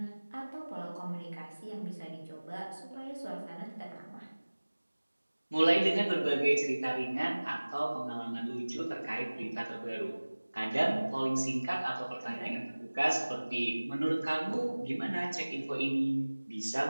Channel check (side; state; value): both; inverted; correlation -1.00